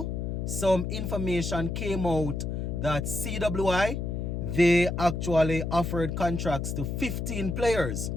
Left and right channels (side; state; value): left; noise; hum, 3 dB below the sound